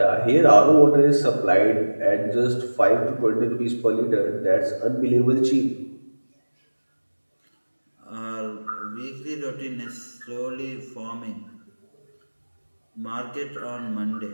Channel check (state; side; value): inverted; both; correlation -1.00